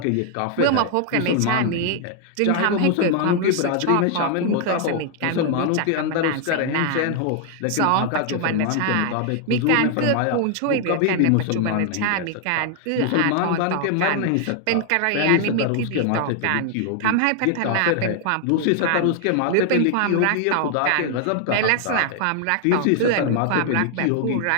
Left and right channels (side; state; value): both; different; correlation 0.00